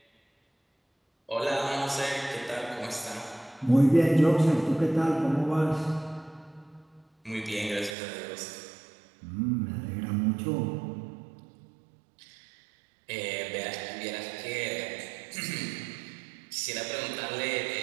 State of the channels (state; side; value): drops out; left; at 8.0 s